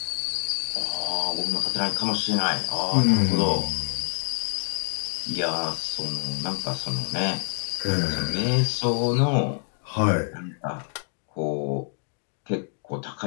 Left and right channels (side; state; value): right; silent; digital silence